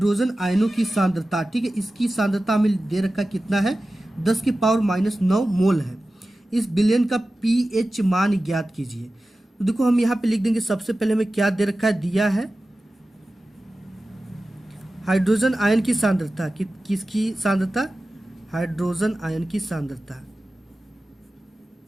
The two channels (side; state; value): both; normal; correlation 0.95